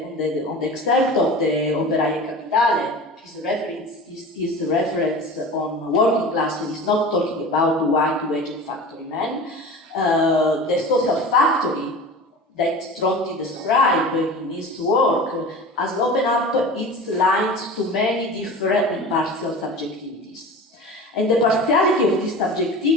excerpt of the Operaie Capitale, his reference on working class is not talking about white-waged factory men. The social factory that Tronti described in his work has opened up its lines to many different and partial subjectivities. And the partiality of this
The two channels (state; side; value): normal; both; correlation 0.35